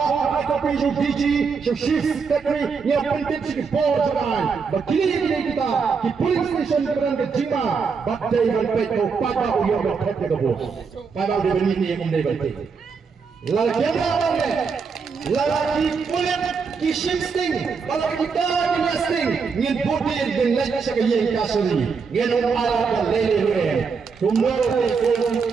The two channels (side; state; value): left; quieter; 5.4 dB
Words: apa kopi ju DG ju chief secretary yang penting si board jalan bakili kita di police station beran ke jima batai ban peto pada uyo ban thok ke bo pada de bani ni yang dai ban lal kena bange lalaki kulit ki shifting kalau kita ki nesting ngin bodi den lek sa yang kasuri ngin ala ka lele we tumor ko